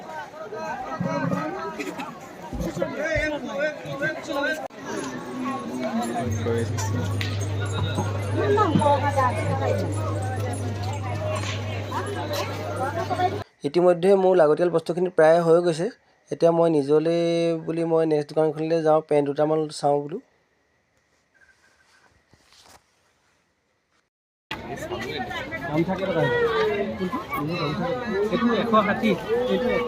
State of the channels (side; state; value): both; identical; correlation 1.00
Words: ইতিমধ্যে মোৰ লাগতিয়াল বস্তুখিনি প্ৰায় হৈ গৈছে। এতিয়া মই নিজলৈ বুলি মই নেক্সট দোকানখনলৈ যাওঁ, পেণ্ট দুটামান চাওঁ বোলো। দাম থাকে টকা এইটো 160, এইটো